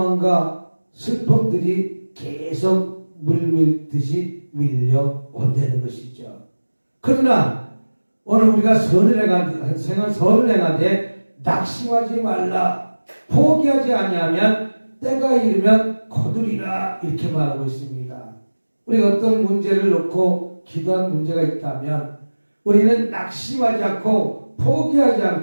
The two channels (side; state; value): both; inverted; correlation -1.00